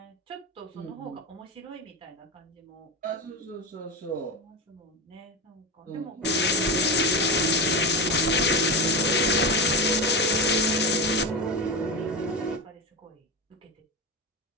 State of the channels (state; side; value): normal; both; correlation 0.17